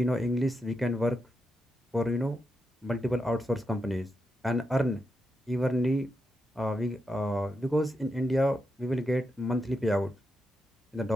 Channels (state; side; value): normal; both; correlation 0.85